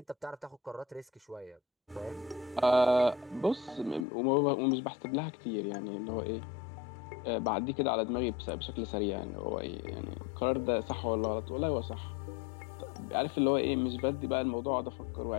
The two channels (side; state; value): right; drops out; at 4.0 s